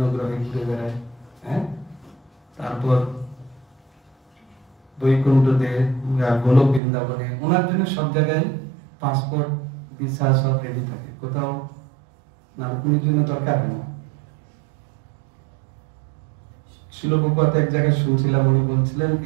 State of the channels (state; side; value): drops out; left; at 6.8 s